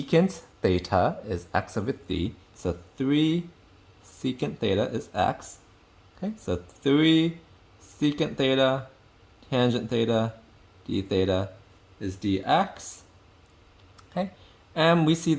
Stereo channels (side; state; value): both; identical; correlation 1.00